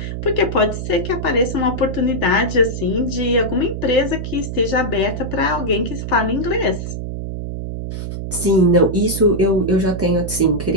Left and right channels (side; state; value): right; noise; hum, 6 dB below the sound